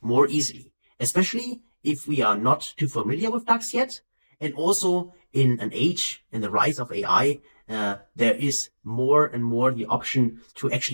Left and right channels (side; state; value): both; inverted; correlation -1.00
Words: easily, especially if we are not too familiar with DAX yet. And also in an age, in the rise of AI, there is more and more the option to